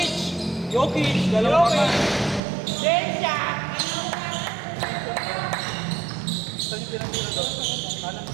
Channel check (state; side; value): drops out; left; at 2.4 s